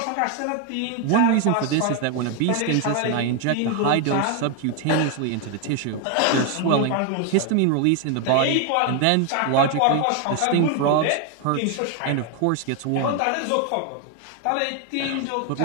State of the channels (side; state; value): both; different; correlation 0.01